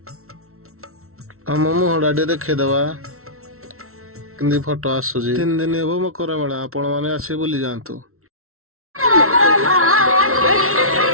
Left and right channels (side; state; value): left; late; 0.63 ms